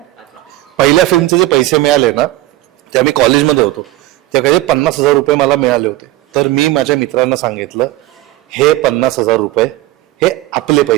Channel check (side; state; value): left; quieter; 16.8 dB